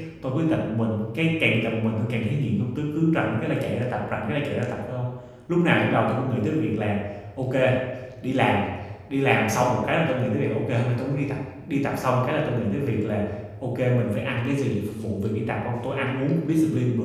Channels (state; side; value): identical; both; correlation 1.00